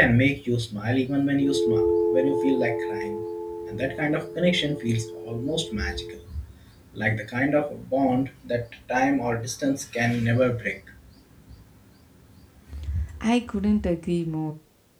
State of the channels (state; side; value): identical; both; correlation 1.00